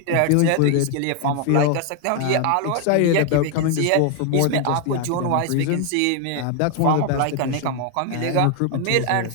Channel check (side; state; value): both; different; correlation 0.01